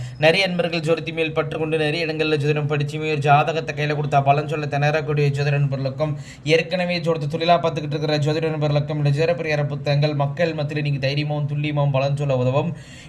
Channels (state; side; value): identical; both; correlation 1.00